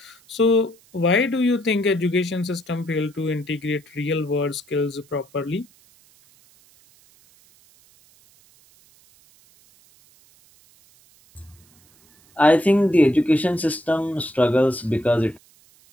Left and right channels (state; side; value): noise; right; hiss, 30 dB below the sound